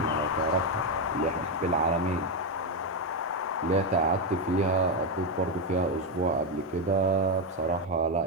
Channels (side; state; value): both; normal; correlation 0.07